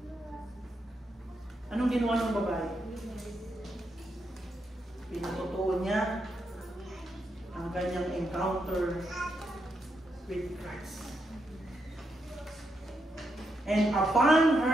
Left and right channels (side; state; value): both; normal; correlation 0.82